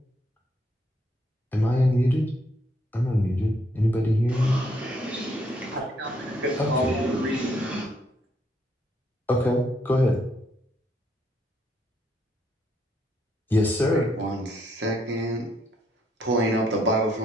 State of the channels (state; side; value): normal; both; correlation 0.72